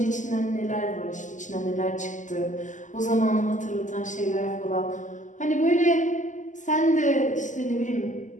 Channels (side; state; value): right; late; 0.37 ms